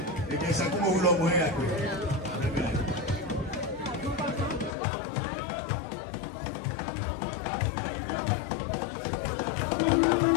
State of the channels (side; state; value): right; drops out; at 4.8 s